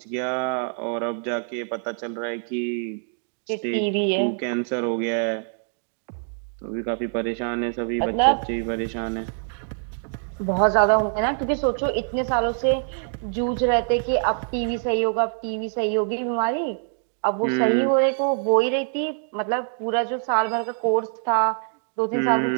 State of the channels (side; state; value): left; silent; digital silence